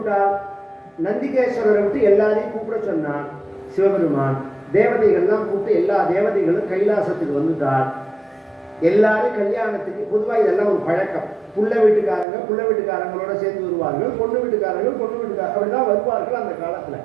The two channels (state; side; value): drops out; left; at 12.2 s